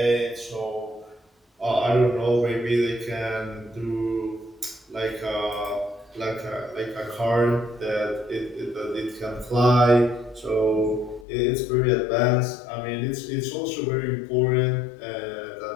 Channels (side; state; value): right; drops out; at 11.2 s